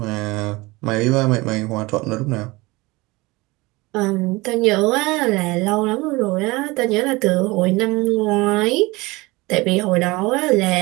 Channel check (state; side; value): quieter; left; 22.7 dB